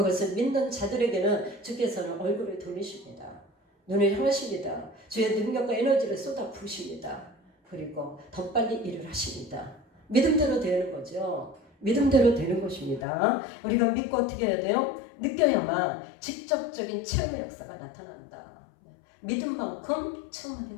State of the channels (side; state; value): right; drops out; at 13.1 s